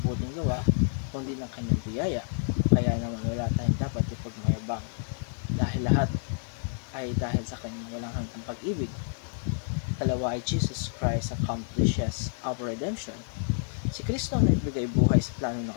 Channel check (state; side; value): silent; right; 59 dB below the other